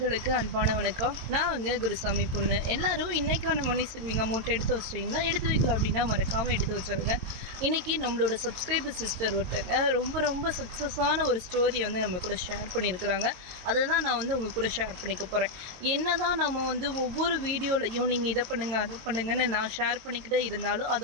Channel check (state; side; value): late; left; 22 ms